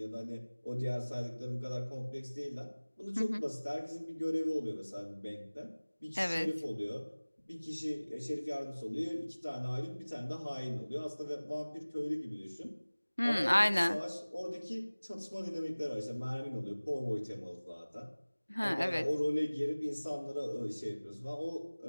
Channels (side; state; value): both; inverted; correlation -1.00